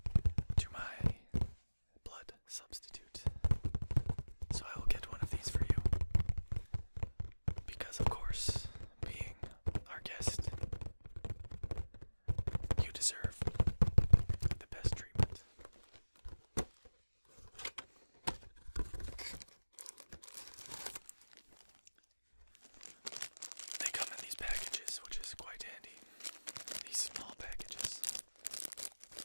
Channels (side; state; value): both; inverted; correlation -1.00